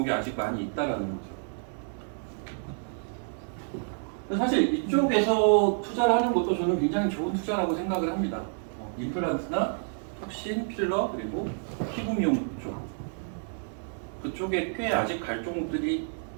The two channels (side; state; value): left; silent; 59 dB below the other